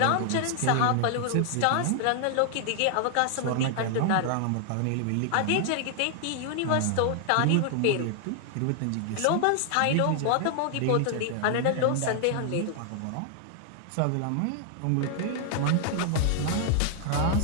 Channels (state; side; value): different; both; correlation 0.00